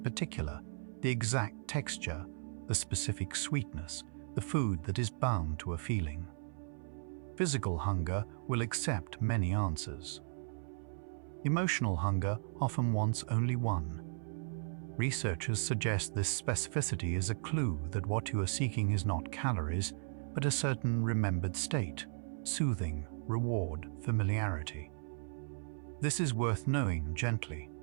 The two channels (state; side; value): silent; left; 54 dB below the other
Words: the exact texture, the specific sweetness, the food that is bound to a feeling. Physical hunger will accept many answers. Emotional hunger often wants only one. Researchers suggest this specificity is a clue that what you are seeking is not calories, but a certain remembered state, soothing, reward, familiarity. This is worth knowing gently,